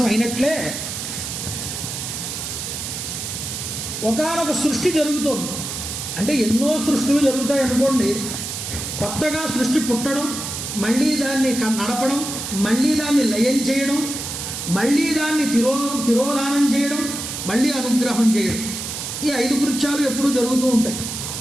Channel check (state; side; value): noise; right; hiss, 6 dB below the sound